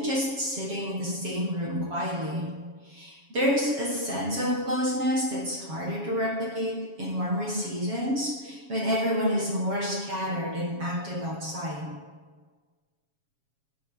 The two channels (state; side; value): late; left; 7.2 ms